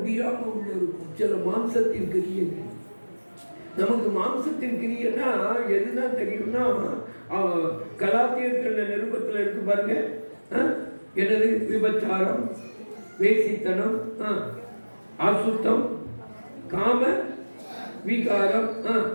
உள்ள இருக்கும். சில மாம்சத்தின் கிரியைகள். நமக்கு மாம்சத்தின் கிரியைன்னா எதுதான் தெரியும்னா, கலாத்தியர்கள் நிருபத்தில் இருக்கு பாருங்க. என்னது? விபச்சாரம், வேசித்தனம், அசுத்தம், காம விகாரம்,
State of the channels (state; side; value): inverted; both; correlation -1.00